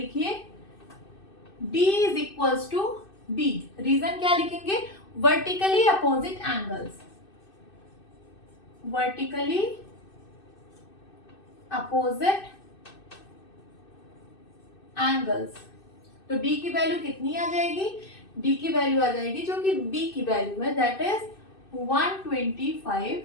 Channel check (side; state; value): right; late; 2.6 ms